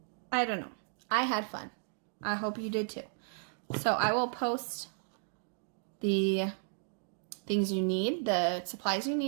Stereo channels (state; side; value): silent; left; digital silence